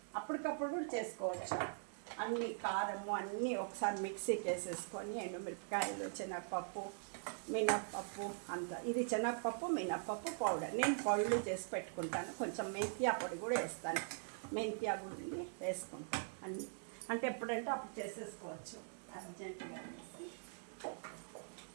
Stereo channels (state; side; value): silent; left; digital silence